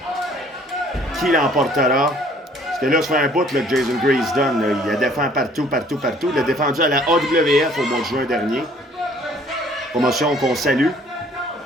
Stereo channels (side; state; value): both; normal; correlation 0.57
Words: Qui l'emportera? Parce que là, ça fait un bout là, que Jason Gray se donne. Là. Il a défendu partout. Il a défendu à la AWF au mois de juin dernier. Promotion qu'on salue.